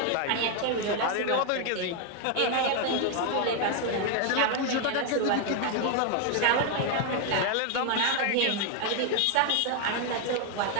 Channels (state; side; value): different; both; correlation 0.01